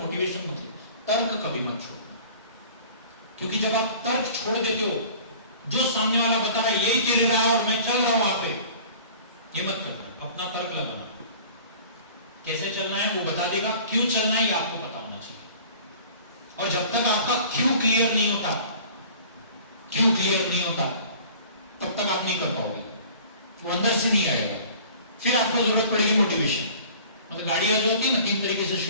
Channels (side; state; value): both; inverted; correlation -0.46